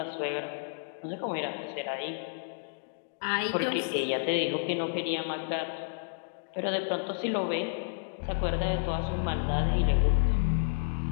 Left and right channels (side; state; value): right; silent; digital silence